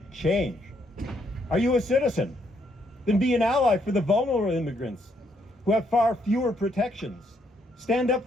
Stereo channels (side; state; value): both; normal; correlation 0.73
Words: change. Are you a citizen? Then be an ally for the vulnerable immigrants who have far fewer protections. Stand up